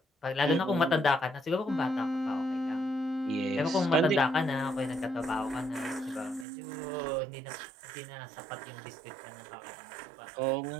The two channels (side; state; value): left; drops out; at 6.5 s